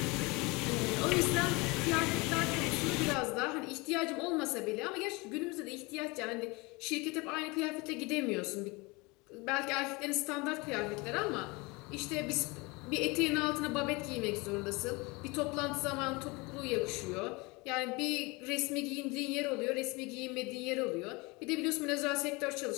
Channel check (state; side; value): quieter; right; 25.7 dB